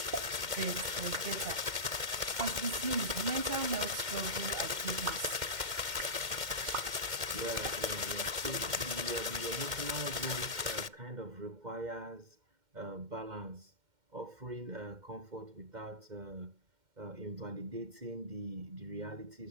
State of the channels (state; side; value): late; left; 2.1 ms